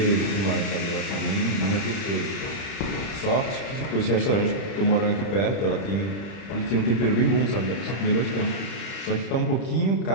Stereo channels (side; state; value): right; late; 30 ms